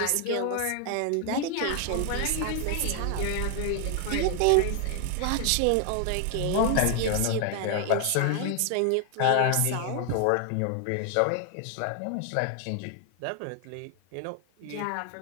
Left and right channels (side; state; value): both; different; correlation 0.00